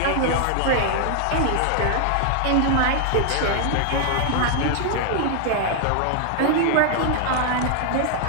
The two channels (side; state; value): both; different; correlation 0.00